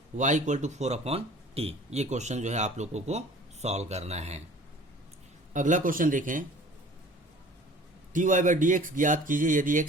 y equal to 4 upon t. ये क्वेश्चन जो है आप लोगों को सॉल्व करना है। अगला क्वेश्चन देखें, dy बाई डी एक्स ज्ञात कीजिए यदि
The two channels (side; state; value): both; normal; correlation 0.47